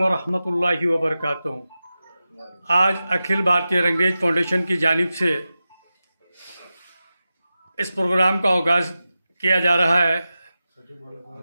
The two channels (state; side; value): inverted; both; correlation -0.93